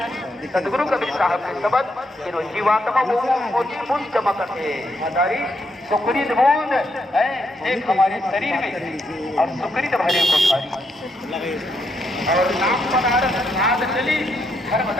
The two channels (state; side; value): normal; both; correlation 0.78